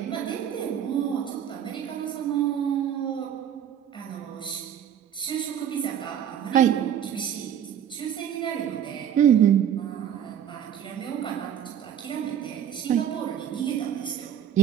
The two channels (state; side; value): quieter; left; 9.5 dB